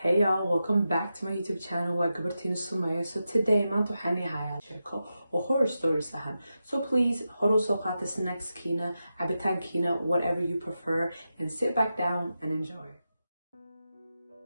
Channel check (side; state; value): both; inverted; correlation -0.90